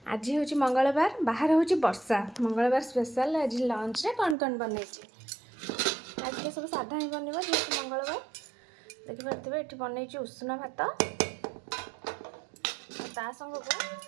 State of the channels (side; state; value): left; drops out; at 4.4 s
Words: आज होची मंगलवार बाहर होची वर्षा मंगलवार स्पेशल आज लंच रे कौन बनैची। आज के सब साधा ही बनबा जेहेतु मंगलवार देखि पारथिबे एठी बनैची उष्ण भात ता संग को सब